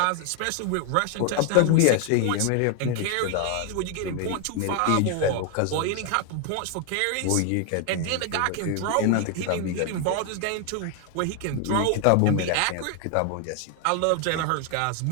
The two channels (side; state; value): both; different; correlation 0.01